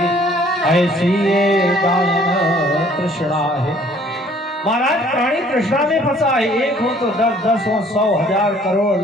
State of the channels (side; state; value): both; normal; correlation 0.58